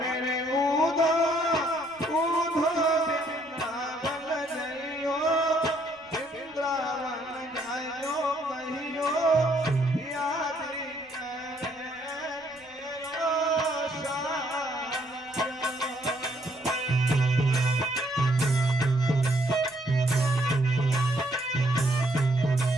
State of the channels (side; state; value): left; noise; rumble, 30 dB below the sound